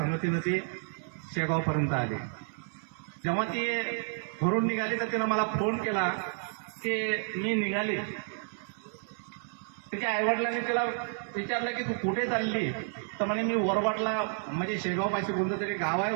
ती शेगावपर्यंत आली. जेव्हा ती घरून निघाली तर तिनं मला फोन केला की मी निघाली. तिच्या आईवडिलांनी तिला विचारलं की तू कुठे चालली? तर म्हणे मी वरवटला, म्हणजे शेगावपाशी कोणतं तरी गाव आहे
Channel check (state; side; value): silent; left; 57 dB below the other